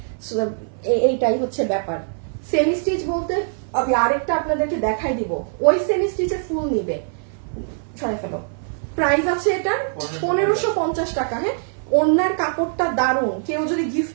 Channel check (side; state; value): left; silent; 59 dB below the other